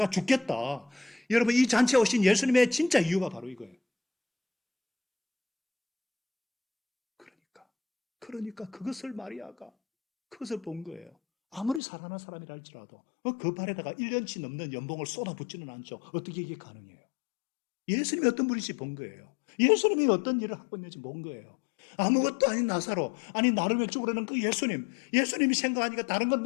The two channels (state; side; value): drops out; right; at 11.8 s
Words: 죽겠다. 여러분, 이 잔치에 오신 예수님의 진짜 이유가 바로 이거예요. 그러니까 그것을 마리아가 그것을 본 거예요. 아무리 살아난 사람이라 할지라도 그 발에다가 1년치 넘는 연봉을 쏟아붓지는 않죠. 어떻게 이게 가능해요? 예수님이 어떤 분인지 본 거예요. 예수님이 어떤 일을 하고 있는지 본 거예요. 아무것도 아닌 나사로, 아니 나를 왜 죽으려는 그 예수님이 생각하니까 다른 건